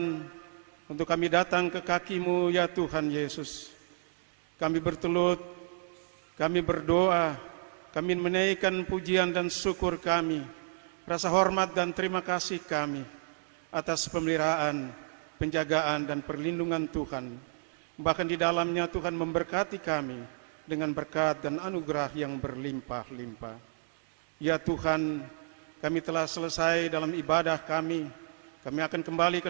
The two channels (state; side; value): silent; left; digital silence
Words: untuk kami datang ke kaki-Mu ya Tuhan Yesus. Kami bertelut, kami berdoa, kami menaikkan pujian dan syukur kami, rasa hormat dan terima kasih kami atas pemeliharaan, penjagaan dan perlindungan Tuhan. Bahkan di dalamnya Tuhan memberkati kami dengan berkat dan anugerah yang berlimpah-limpah. Ya Tuhan, kami telah selesai dalam ibadah kami. Kami akan kembali